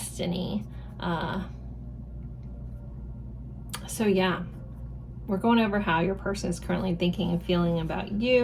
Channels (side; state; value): both; identical; correlation 1.00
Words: So yeah, we're going over how your person is currently thinking and feeling about